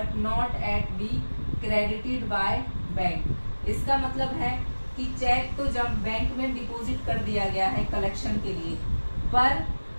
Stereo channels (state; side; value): inverted; both; correlation -1.00